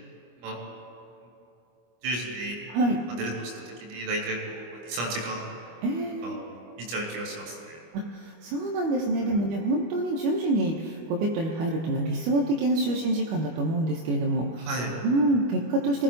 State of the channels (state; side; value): late; left; 25 ms